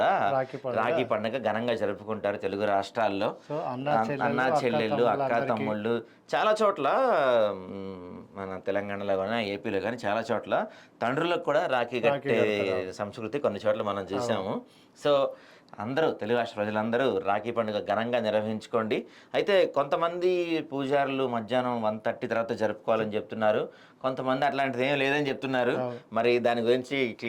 రాఖీ పండుగ ఘనంగా జరుపుకుంటారు తెలుగు రాష్ట్రాల్లో. అన్నా చెల్లెళ్ళు, అక్క తమ్ముళ్ళు చాలా చోట్ల, మన తెలంగాణలో కానీ ఏపీలో కానీ చాలా చోట్ల తండ్రులకు కూడా రాఖీ కట్టే సంస్కృతి కొన్ని చోట్ల మనం చూసాము. సో అందరూ తెలుగు రాష్ట్ర ప్రజలందరూ రాఖీ పండుగ ఘనంగా నిర్వహించుకోండి. అయితే కొంతమంది పూజారులు మధ్యాహ్నం 1:30 తర్వాత జరుపుకోవాలని చెప్తున్నారు, కొంతమంది అట్లాంటిది ఏం లేదని చెప్తున్నారు. మరి దాని గురించి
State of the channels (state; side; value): identical; both; correlation 1.00